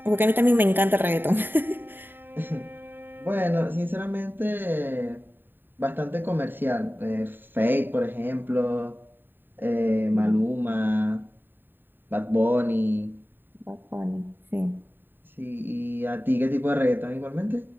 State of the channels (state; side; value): late; left; 0.095 ms